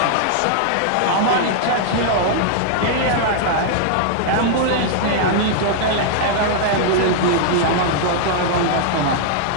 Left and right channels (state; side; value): different; both; correlation -0.01